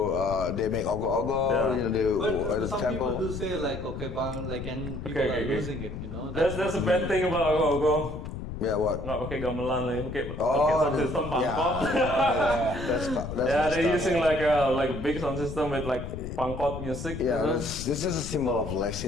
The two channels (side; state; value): left; noise; rumble, 8 dB below the sound